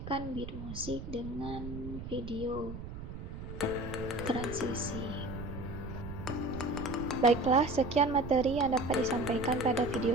beat musik dengan video transisi. Baiklah, sekian materi yang dapat disampaikan pada video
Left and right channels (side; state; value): right; noise; rumble, 9 dB below the sound